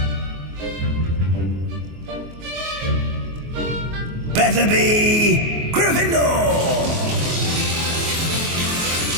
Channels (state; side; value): late; left; 24 ms